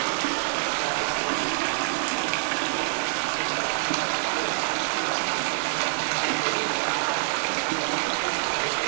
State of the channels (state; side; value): silent; left; digital silence